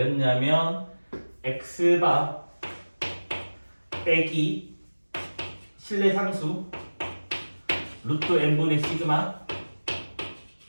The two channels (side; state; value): both; inverted; correlation -1.00